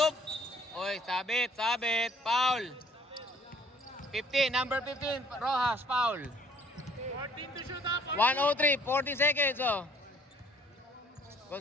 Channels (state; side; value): normal; both; correlation 0.58